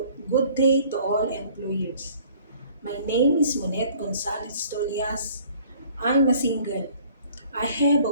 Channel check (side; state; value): both; inverted; correlation -0.54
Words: employers. My name is Monet Gonzalez Tolias. I'm a single. I have a